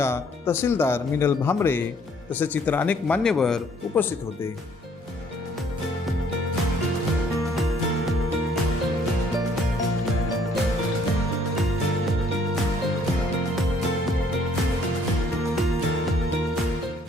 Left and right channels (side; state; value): both; normal; correlation 0.63